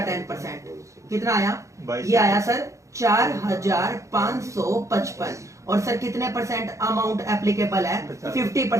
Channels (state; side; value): late; left; 0.15 ms